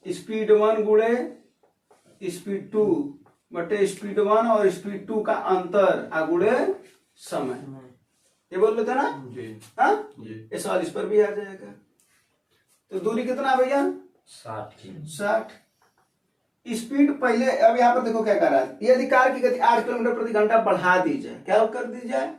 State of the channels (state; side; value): identical; both; correlation 1.00